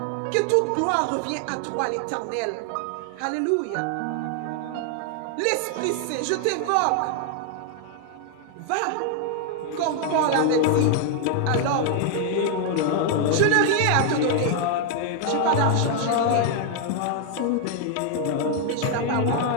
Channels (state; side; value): different; both; correlation 0.00